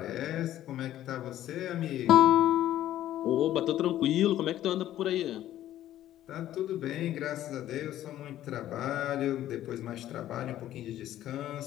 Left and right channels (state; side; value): quieter; right; 12.9 dB